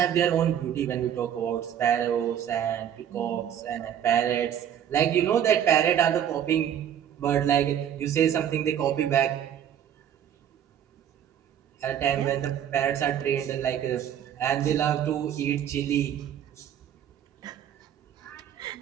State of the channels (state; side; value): quieter; left; 9.7 dB